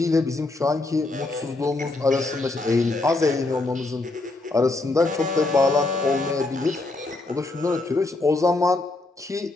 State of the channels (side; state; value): right; quieter; 3.1 dB